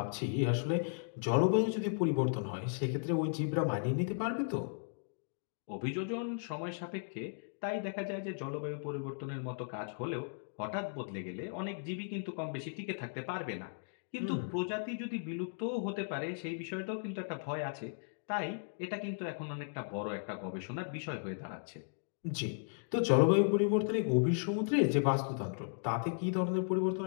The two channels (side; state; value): right; silent; digital silence